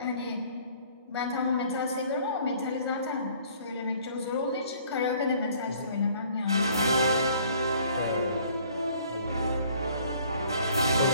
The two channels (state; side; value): inverted; both; correlation -0.57